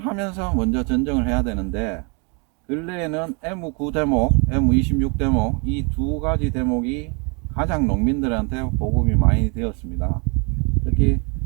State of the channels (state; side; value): quieter; left; 33.8 dB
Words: 먼저 전정을 해야 되는데, 근래에는 M9 대목, M26 대목 이 두 가지 대목이 가장 농민들한테 보급이 많이 되었습니다. 특히